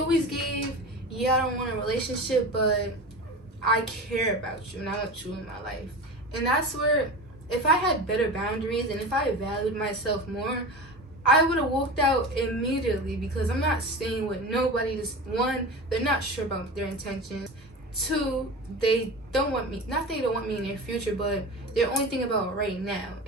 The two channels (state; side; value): normal; both; correlation 0.30